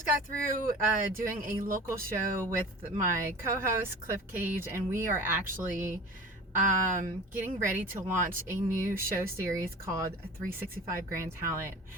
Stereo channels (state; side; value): normal; both; correlation 0.38